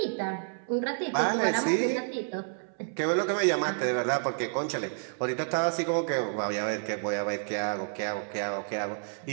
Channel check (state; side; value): silent; left; 58 dB below the other